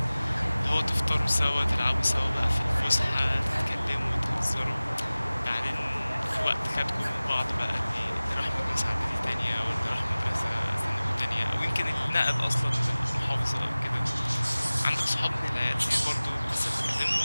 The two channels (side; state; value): both; inverted; correlation -0.98